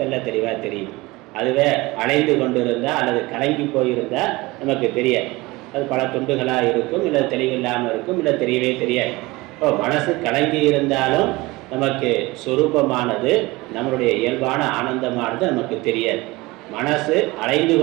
தெளிவாக தெரியும். அதுவே அலைந்து கொண்டு இருந்தால் அல்லது கலங்கி போயிருந்தால் நமக்கு தெரியாது. அது பல துண்டுகளாக இருக்கும், இல்லை தெளிவில்லாமல் இருக்கும், இல்லை தெரியவே தெரியாது. இப்போ மனசு கலங்கி இருந்தாலும் நமக்கு சொரூபமானது, நம்மளுடைய இயல்பான ஆனந்தமானது நமக்கு தெரியாது. மனசு அலைந்து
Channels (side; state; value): left; quieter; 21.8 dB